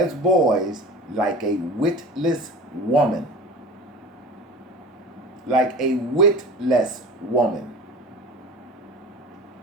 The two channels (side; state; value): both; normal; correlation 0.36